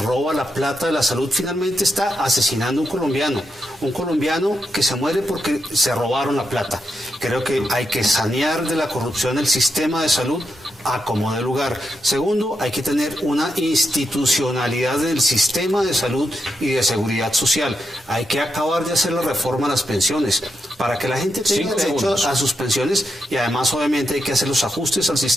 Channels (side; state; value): both; normal; correlation 0.84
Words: la plata de la salud finalmente está asesinando a un colombiano que se muere porque se robaron la plata. Creo que hay que sanear de la corrupción el sistema de salud a como dé lugar. Segundo, hay que tener una institucionalidad del sistema de salud y de seguridad social. Hay que acabar de hacer la reforma a las pensiones para que la gente tenga derecho a sus pensiones, y además obviamente hay que hacer los ajustes al